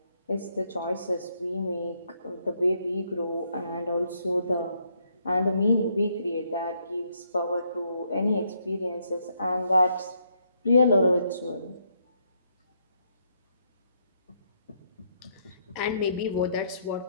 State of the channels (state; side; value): inverted; both; correlation -0.74